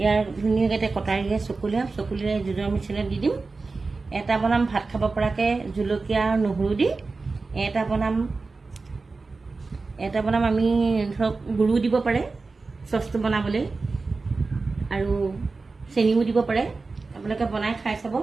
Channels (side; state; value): left; quieter; 3.9 dB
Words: धुनियाके कटारिए चकुलिए जुदर मिश्रण দি দিম এটা বনাম ভাত খাব পৰাকে জুলকিয়া নহৰু দি এটা বনাম আমি ধৰক গুৰু দিব পাৰে সসটো বনাবলৈ আৰু চেনিও দিব পাৰে আপোনালোকে বনাই খাই চাব